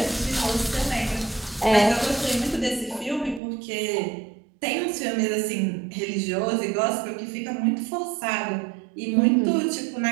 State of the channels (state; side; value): drops out; left; at 3.4 s